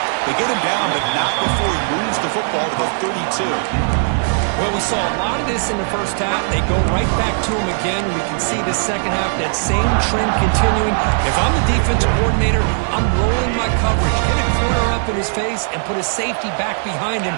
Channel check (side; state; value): left; silent; digital silence